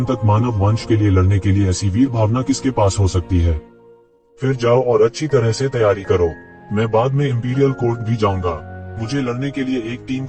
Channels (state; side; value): identical; both; correlation 1.00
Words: तक मानव वंश के लिए लड़ने के लिए ऐसी वीर भावना किसके पास हो सकती है? फिर जाओ और अच्छी तरह से तैयारी करो। मैं बाद में इंपीरियल कोर्ट भी जाऊंगा। मुझे लड़ने के लिए एक टीम